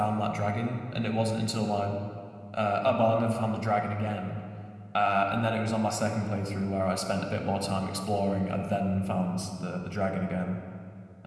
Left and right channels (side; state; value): both; identical; correlation 1.00